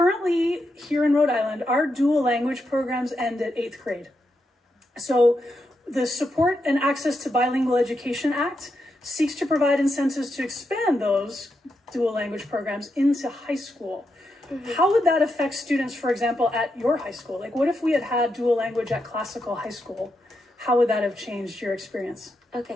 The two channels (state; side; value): normal; both; correlation 0.84